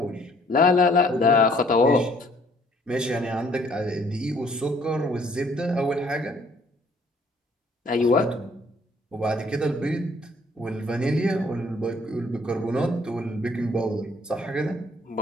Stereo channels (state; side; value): normal; both; correlation 0.61